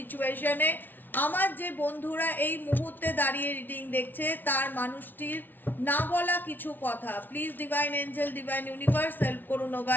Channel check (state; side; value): late; right; 0.089 ms